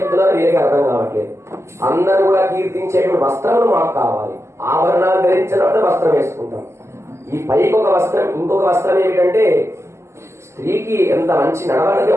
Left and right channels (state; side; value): late; left; 0.13 ms